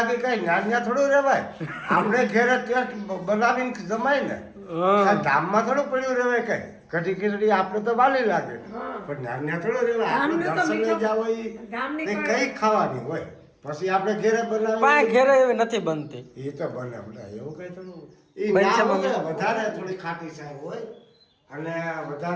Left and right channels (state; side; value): identical; both; correlation 1.00